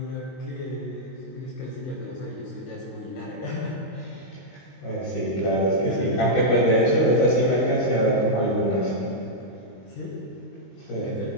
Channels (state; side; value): late; right; 22 ms